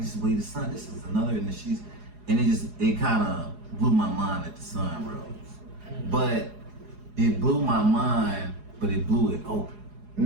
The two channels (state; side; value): late; left; 4.8 ms